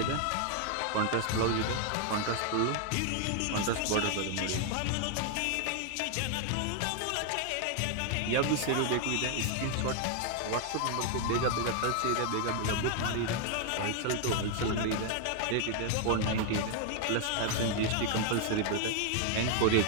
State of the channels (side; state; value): both; different; correlation 0.00